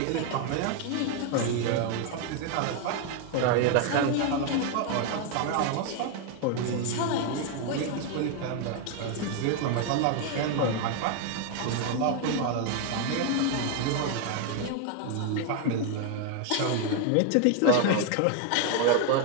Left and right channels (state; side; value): different; both; correlation 0.01